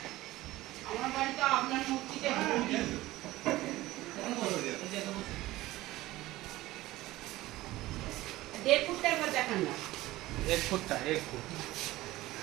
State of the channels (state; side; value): quieter; left; 17.4 dB